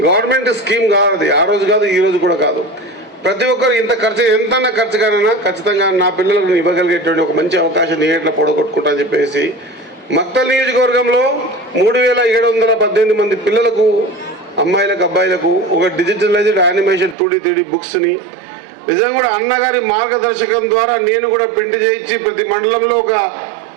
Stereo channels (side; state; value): left; drops out; at 17.2 s